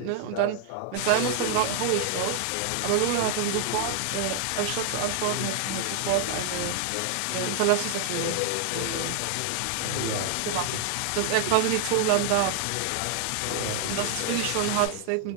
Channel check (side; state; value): both; different; correlation 0.00